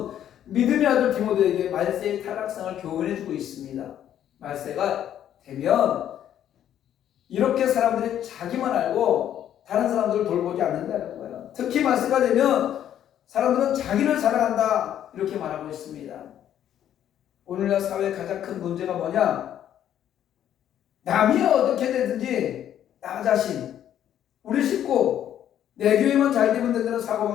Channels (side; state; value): right; quieter; 10.6 dB